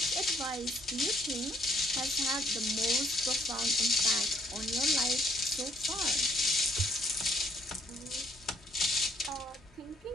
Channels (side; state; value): both; normal; correlation 0.66